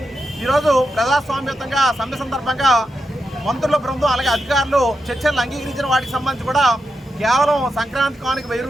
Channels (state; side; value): normal; both; correlation 0.87